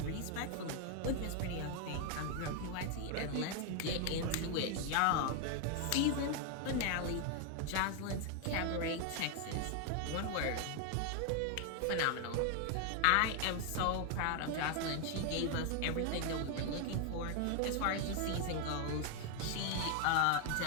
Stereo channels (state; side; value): different; both; correlation 0.00